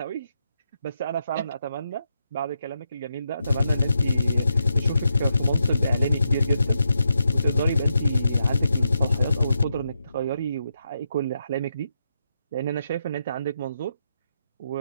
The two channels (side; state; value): both; inverted; correlation -0.83